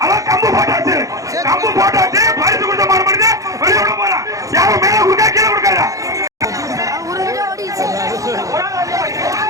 அவன் கம்பு போட்டாச்சு பரிசு கொடுத்த மாடு பண்ணிட்டு வெளியே விட போறான் யாரும் மேல கொடுக்கா கீழே கொடுக்காதா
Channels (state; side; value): late; left; 0.16 ms